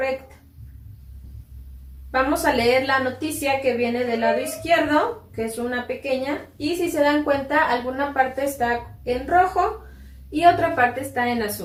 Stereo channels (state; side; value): identical; both; correlation 1.00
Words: Vamos a leer la noticia que viene del lado izquierdo, que es una pequeña, y si se dan cuenta, alguna parte está en rojo y otra parte está en